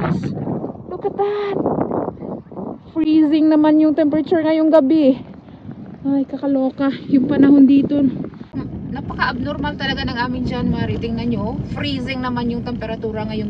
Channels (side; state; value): both; identical; correlation 1.00